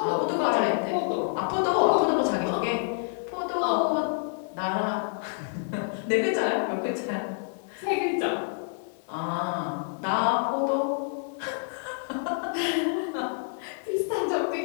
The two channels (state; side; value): silent; right; 59 dB below the other